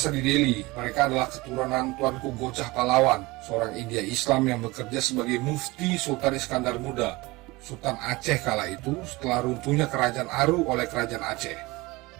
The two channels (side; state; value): left; quieter; 22.2 dB